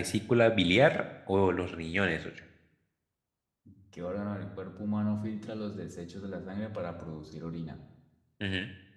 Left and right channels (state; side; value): identical; both; correlation 1.00